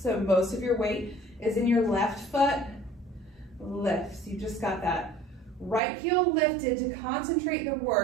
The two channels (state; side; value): drops out; left; at 5.8 s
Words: most of your weight is in your left foot. Lift. So you just got that right heel lifted to concentrate the